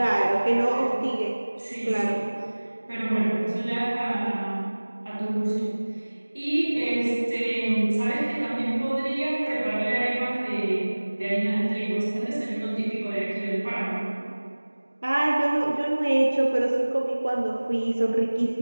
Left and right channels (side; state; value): both; inverted; correlation -1.00